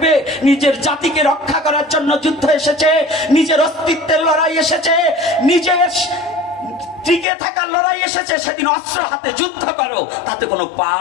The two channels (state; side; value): drops out; right; at 7.2 s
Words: নিজের জাতিকে রক্ষা করার জন্য যুদ্ধ এসেছে, নিজের অস্তিত্বের লড়াই এসেছে, নিজের টিকে থাকার লড়াই এসেছে, সেদিন অস্ত্র হাতে যুদ্ধ করো, তাতে কোনো